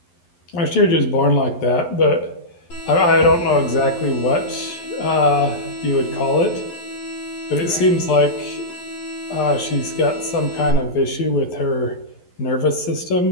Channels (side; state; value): right; late; 11 ms